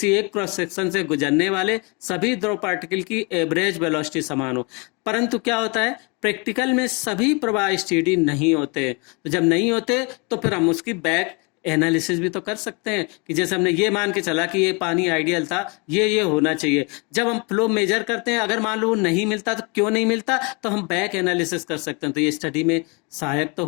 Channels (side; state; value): right; quieter; 31.0 dB